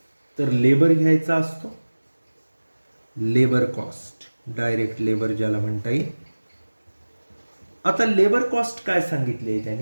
तर लेबर घ्यायचा असतो. लेबर कॉस्ट, डायरेक्ट लेबर ज्याला म्हणता येईल. आता लेबर कॉस्ट काय सांगितले आहे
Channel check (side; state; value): both; inverted; correlation -1.00